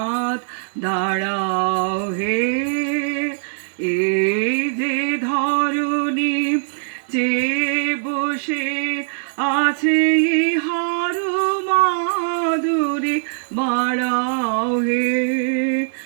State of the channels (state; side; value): silent; left; digital silence